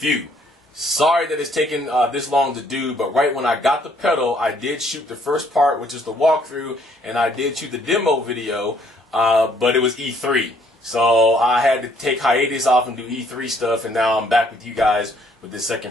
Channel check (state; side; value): normal; both; correlation 0.65